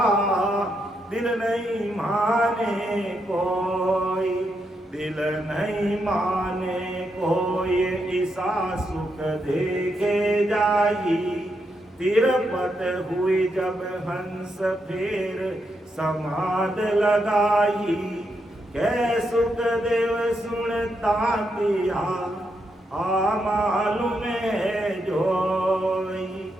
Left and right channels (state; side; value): normal; both; correlation 0.81